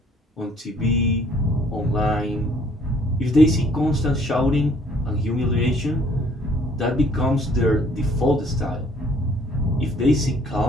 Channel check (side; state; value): both; normal; correlation 0.60